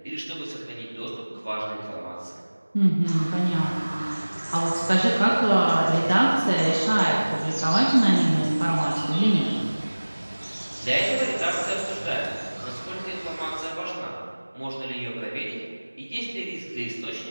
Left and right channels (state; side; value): inverted; both; correlation -1.00